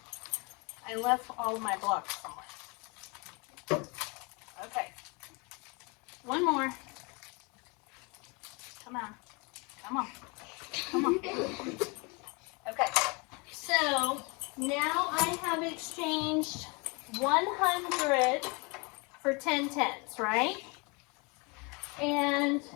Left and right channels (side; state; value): right; quieter; 30.0 dB